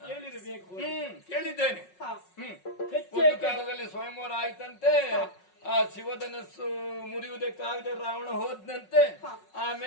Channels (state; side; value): late; right; 5.4 ms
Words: ಹೇಳಿರಬೇಕು. ಕೇಳಿದ್ದೇನೆ. ಒಂದು ಕಾಲದಲ್ಲಿ ಸ್ವಯಂವರ ಆಯ್ತಂತೆ, ಆ ಶಿವಧನಸ್ಸು ಮುರಿಯುವುದಕ್ಕಾಗದೆ ರಾವಣ ಹೋದ್ನಂತೆ,